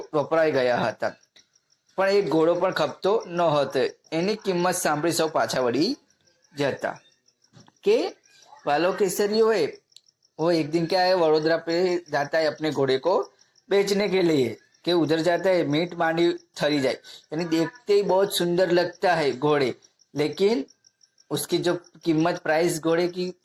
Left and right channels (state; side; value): identical; both; correlation 1.00